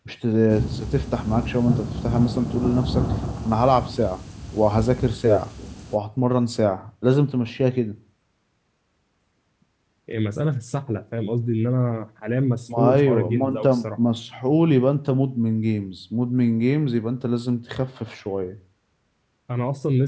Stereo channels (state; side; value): identical; both; correlation 1.00